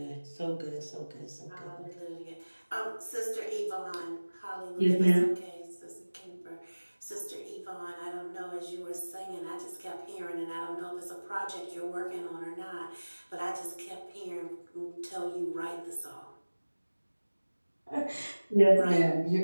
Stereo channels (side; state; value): both; inverted; correlation -1.00